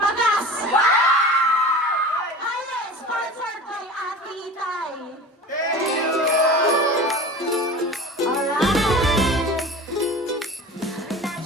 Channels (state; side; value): normal; both; correlation 0.36